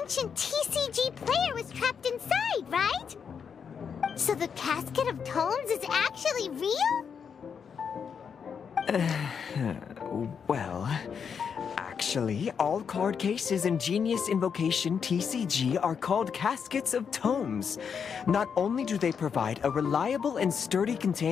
ancient TCG player was trapped inside, right? So the casket of tomes is actually real? Well, actually, all card cases in Genius Invocation TCG are called caskets of tomes. Not only do they provide a reliable and sturdy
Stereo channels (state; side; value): quieter; right; 6.8 dB